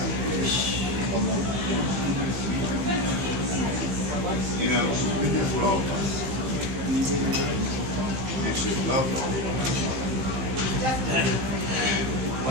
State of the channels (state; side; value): late; left; 15 ms